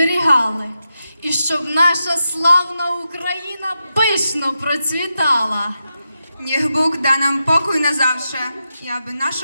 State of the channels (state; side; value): inverted; both; correlation -0.88